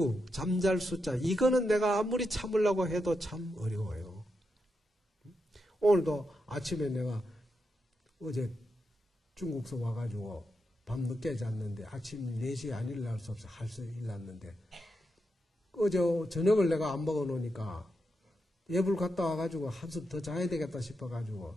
잠잘 숫자 이거는 내가 아무리 참으려고 해도 참 어려워요. 오늘도 아침에 내가 어제 중국서 와가지고 밤늦게 잤는데 아침 4시에 안 일어날 수 없어 할 수 일어났는데 어제 저녁을 내가 안 먹어놓으니까 예불 갔다 와가지고 한숨 더 자야 되겠다 싶어가지고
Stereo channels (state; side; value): normal; both; correlation 0.85